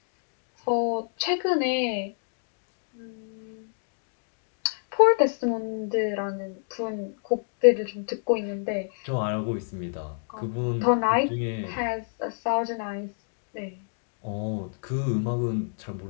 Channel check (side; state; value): right; silent; digital silence